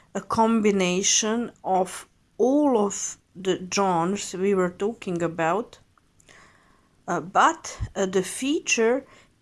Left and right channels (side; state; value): both; identical; correlation 1.00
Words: a combination of all of the genres we were talking about, but the feature